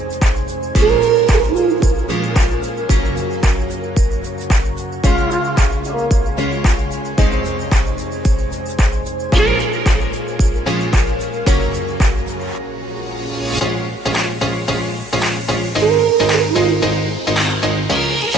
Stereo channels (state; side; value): normal; both; correlation 0.72